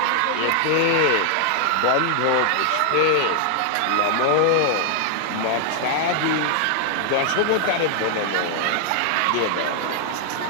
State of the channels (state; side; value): different; both; correlation 0.00